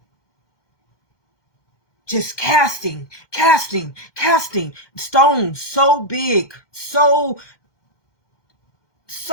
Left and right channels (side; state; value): right; late; 2.1 ms